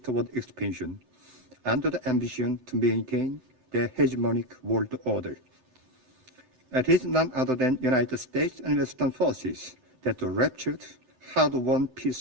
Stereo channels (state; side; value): late; left; 11 ms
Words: expansion under the ambition to maintain the hegemonic world order. It is none other than United States and Western forces that ruptured hard-won